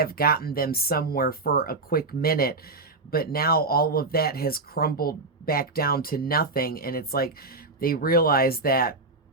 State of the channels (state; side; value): quieter; left; 3.4 dB